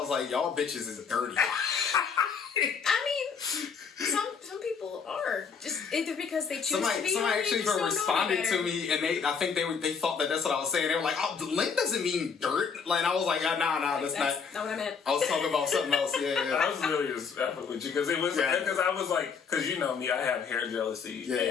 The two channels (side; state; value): right; quieter; 6.0 dB